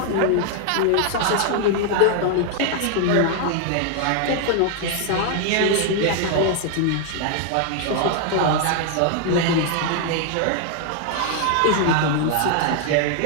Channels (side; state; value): both; different; correlation 0.00